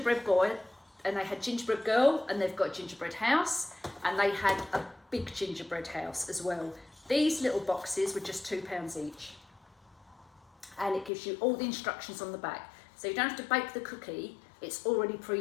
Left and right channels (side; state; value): right; drops out; at 11.1 s